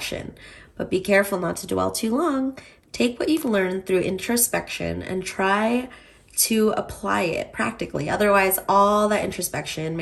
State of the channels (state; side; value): identical; both; correlation 1.00